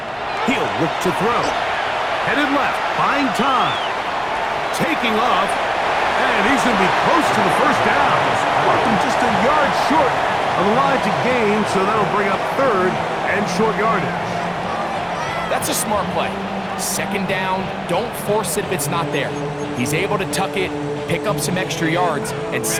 He'll look to throw. Headed left, buying time. Taking off, and he's going to be close to the 1st down. Just a yard short of the line to gain, so that'll bring up 3rd and short yardage. That's a smart play. 2nd down, don't force it if it's not there. He's able to tuck it, pick up some extra yards, and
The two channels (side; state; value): both; identical; correlation 1.00